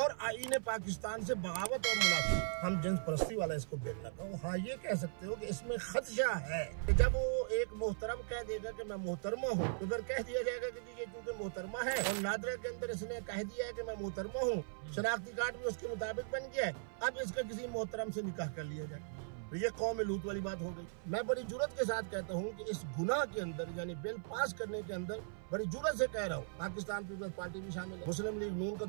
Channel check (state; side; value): silent; left; 52 dB below the other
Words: आईने पाकिस्तान से बगावत और मुनाफी। हम जिन्स परस्ती वाला इसको बिल ना कहो। हाँ, ये कह सकते हो कि इसमें खदशा है कि जब वो एक मोहतरम कह देगा कि मैं मोहतरमा हूँ, तो फिर कह दिया जाएगा कि ये चूंकि मोहतरमा है और नादरा के अंदर इसने कह दिया है कि मैं मोहतरमा हूँ, शनाख्ती कार्ड भी उसके मुताबिक बन गया है, अब इसका किसी मोहतरम से निकाह कर लिया जाए, तो ये कौम लूत वाली बात हो गई। मैं बड़ी जुर्रत के साथ कहता हूँ कि इस गुनाह के अंदर यानी बिल पास करने के अंदर बड़ी जुर्रत से कह रहा हूँ, पाकिस्तान पीपल्स पार्टी भी शामिल है, मुस्लिम लीग नून का